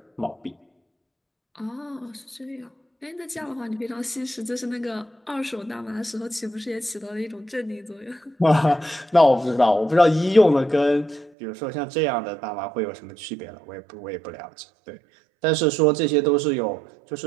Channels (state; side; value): drops out; left; at 11.3 s